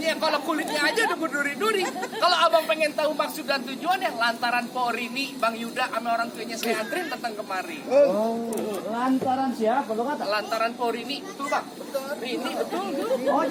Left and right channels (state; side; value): identical; both; correlation 1.00